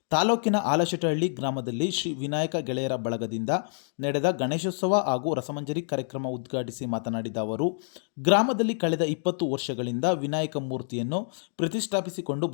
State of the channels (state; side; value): silent; right; digital silence